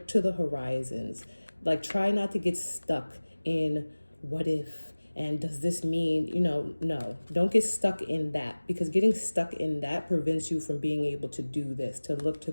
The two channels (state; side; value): inverted; both; correlation -1.00